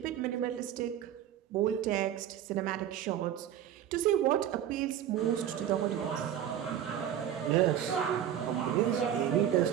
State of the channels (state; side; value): quieter; left; 10.4 dB